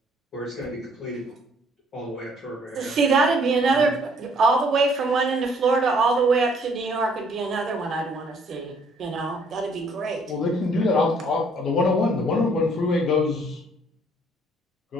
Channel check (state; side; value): normal; both; correlation 0.63